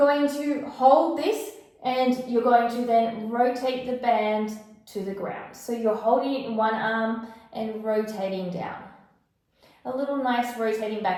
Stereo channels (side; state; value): both; identical; correlation 1.00